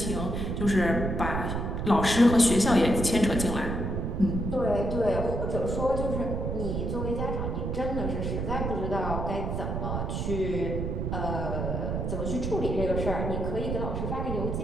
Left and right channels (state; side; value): noise; right; rumble, 2 dB below the sound